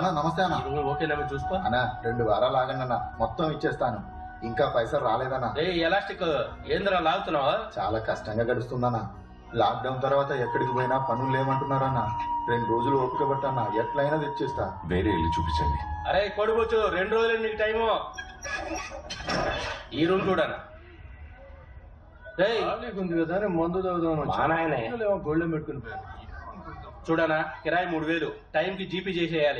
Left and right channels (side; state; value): both; identical; correlation 1.00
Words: నమస్తే అన్న. ఓకేనా చూసుకో అన్నా. 2 వారాలు ఆగండి, మొత్తం ఇచ్చేస్తాను. ఇంకా పైసలు రాలేదన్నా. ఎలాస్టిక్ ఏంద్రా లాగుతున్నావా? చాలా కష్టంగా గడుస్తుందన్నా. లాక్డౌన్ తర్వాత ఎక్కడికి పోయినా పనులు లేమంటున్నారన్నా. 2 రోజులు ఓపిక పట్టన్నా, ఎట్లయినా తెచ్చేస్తా. వేరే ఇల్లు చూపించండి. అరే కొడుకోవచ్చు, 2 రోజులు నీకు టైము. ఈ రూమ్ చూడనా? ఉంది కదా మందు తాగుదాం. మా నాయనే గోల్డెన్ పెట్టుకుని చూడనా కిరాయి 3000 టైంకి జీపీ